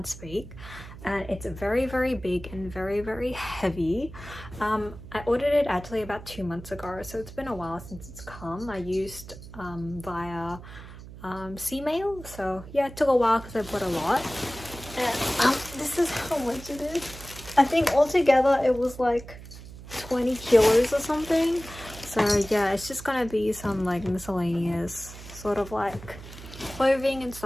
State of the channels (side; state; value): right; noise; hum, 15 dB below the sound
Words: speak. And it's very big and very heavy. I ordered it actually about 2 months ago, so it's been a while since it's come. I used via C-mail, so yeah, it took a while because I bought a lot. And this is how much it is. I think altogether it was like 20 kilos or something. So yeah, it's just gonna be some like miscellaneous sort of like clothing and